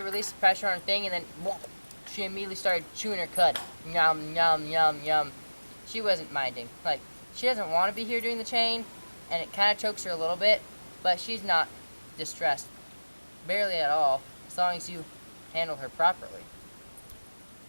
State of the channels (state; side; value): inverted; both; correlation -1.00